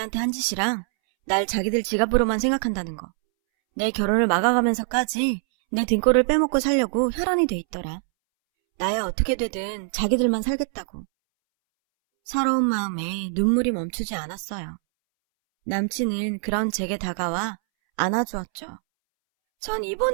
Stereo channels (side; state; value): left; silent; 63 dB below the other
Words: 한 짓이랑 날 자기들 지갑으로만 생각한다는 거. 내 결혼을 막아가면서까지 내 등골을 빼먹고 살려고 혈안이 돼 있더라. 나야 어떻게 되든 자기들만 살겠다고. 서러운 마음에 눈물이 멈추지 않았어요. 남친은 그런 제게 다가와 안아주었죠. 전